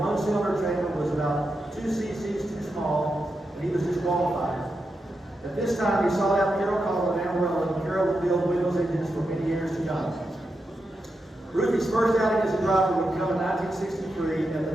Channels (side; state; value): both; normal; correlation 0.87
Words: cylinder chamber was about 2 cc's too small, and he was disqualified. At this time, he sought out Carol Collin and Amarillo, and Carol would build Wendell's engines for many years to come. Ruthie's first outing as a driver would come in 1963 at